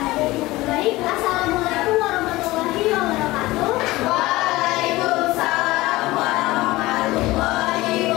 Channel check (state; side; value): quieter; right; 19.2 dB